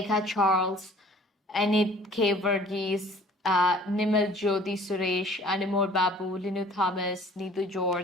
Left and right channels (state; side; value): normal; both; correlation 0.52